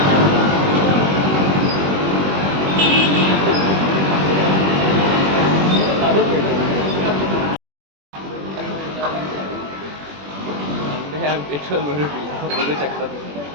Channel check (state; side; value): late; left; 21 ms